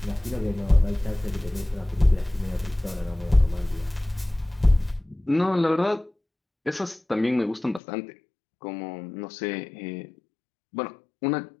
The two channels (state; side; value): drops out; right; at 7.8 s